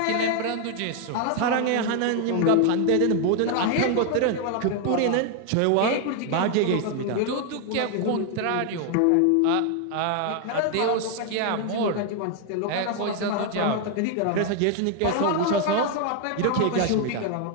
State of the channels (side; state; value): both; different; correlation 0.01